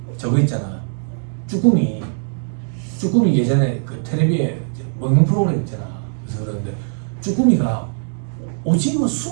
저거 있잖아. 쭈꾸미 예전에 그 텔레비에 먹는 프로그램 있잖아. 그래서 그러는데 쭈꾸미가 오징어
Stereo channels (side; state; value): left; silent; digital silence